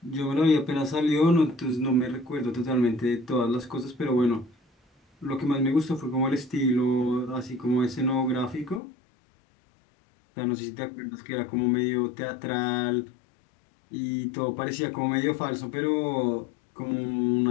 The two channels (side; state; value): right; drops out; at 8.8 s